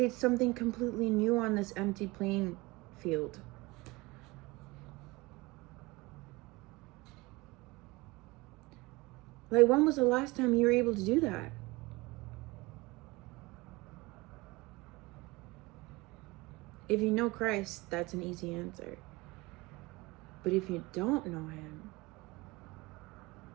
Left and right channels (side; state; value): left; quieter; 22.9 dB